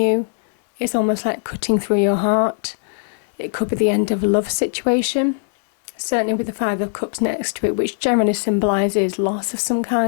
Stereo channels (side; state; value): right; silent; digital silence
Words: It's almost like cutting through your heart. It could be the end of a love situation, certainly with the Five of Cups next to it, which generally symbolises loss of some